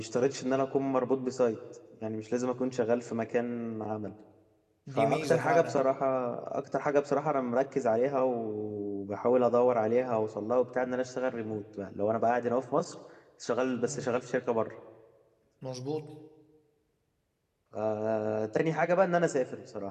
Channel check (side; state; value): both; identical; correlation 1.00